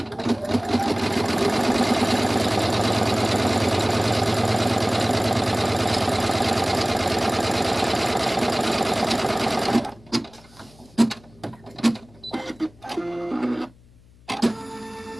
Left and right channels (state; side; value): noise; left; hum, 27 dB below the sound